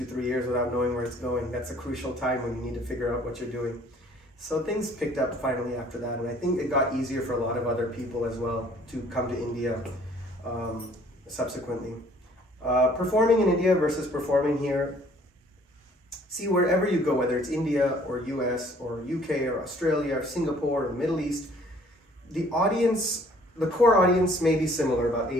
3 years without knowing where it's going. That's a crucial time when you need to figure out what you're doing. So things picked up finally after that, and I think it got easier for a lot of other people as well to come to India subsequently. Performing in India versus performing here. See, wherever you go, whether it's India or US or UK or Australia or Singapore or the Middle East, the audience, the core audience may be similar, about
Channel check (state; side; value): normal; both; correlation 0.57